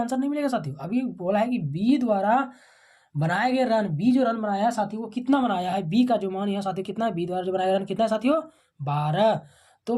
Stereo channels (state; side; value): identical; both; correlation 1.00